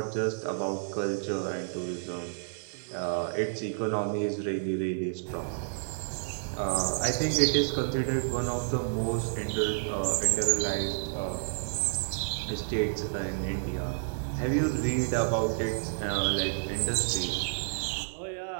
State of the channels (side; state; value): left; silent; digital silence